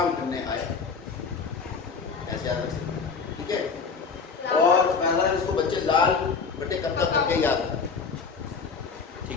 करने आया, ऐसे याद रख सकते, ठीक है। और पहला इसको बच्चे लाल बटे कक्का करके याद रखते,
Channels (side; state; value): right; quieter; 5.3 dB